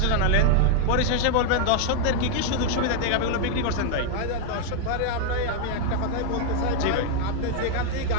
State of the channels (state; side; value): different; both; correlation 0.00